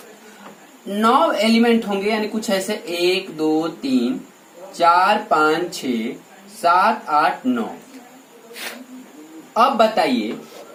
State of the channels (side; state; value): both; identical; correlation 1.00